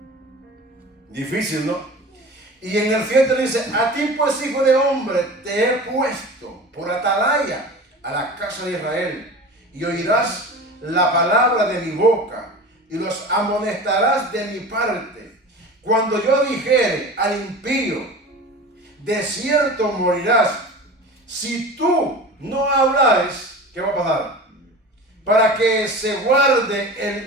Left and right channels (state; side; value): normal; both; correlation 0.35